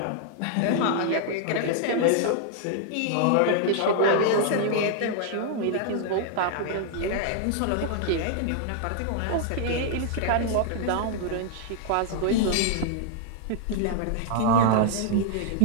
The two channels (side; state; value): both; different; correlation 0.00